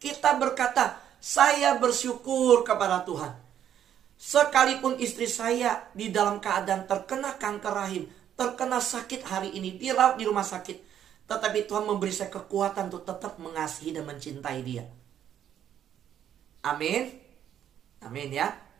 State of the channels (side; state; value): left; quieter; 10.0 dB